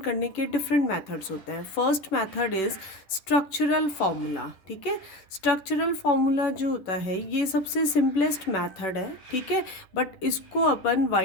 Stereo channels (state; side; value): late; right; 11 ms